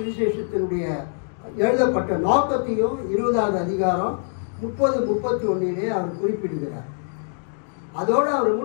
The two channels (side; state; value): right; silent; 63 dB below the other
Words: எழுதப்பட்ட நோக்கத்தையும் 20வது அதிகாரம் 30-31 அவர் குறிப்பிடுகிறார். அதோடு அவர்